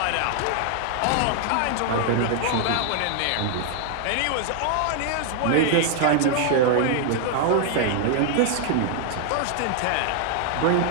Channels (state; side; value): different; both; correlation 0.00